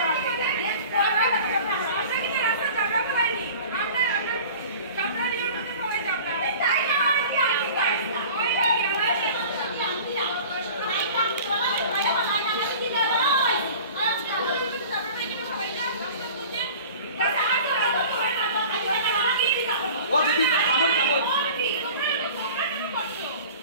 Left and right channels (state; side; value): inverted; both; correlation -0.42